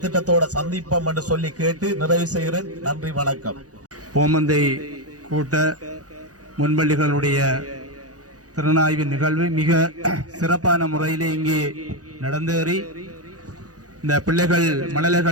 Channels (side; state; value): left; late; 0.67 ms